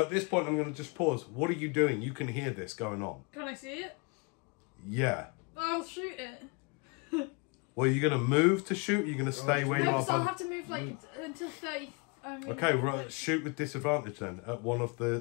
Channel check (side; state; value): right; quieter; 31.4 dB